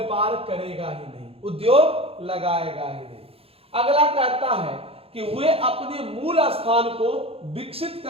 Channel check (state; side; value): late; left; 0.28 ms